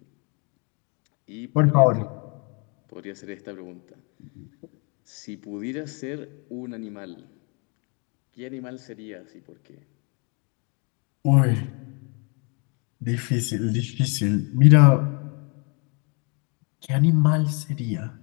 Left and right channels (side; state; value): right; quieter; 34.2 dB